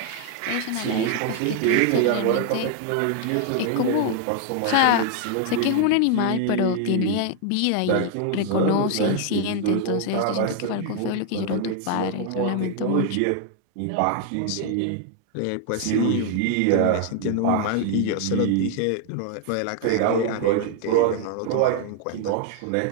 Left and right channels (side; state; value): both; different; correlation 0.00